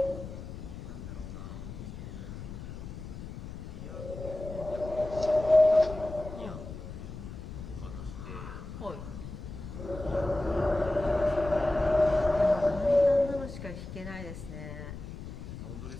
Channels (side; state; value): left; noise; rumble, 10 dB below the sound